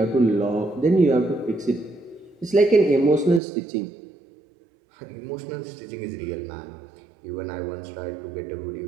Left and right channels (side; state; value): left; drops out; at 3.4 s